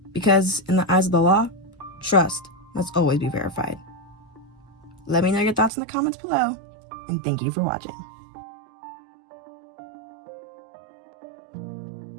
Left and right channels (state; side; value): drops out; left; at 5.7 s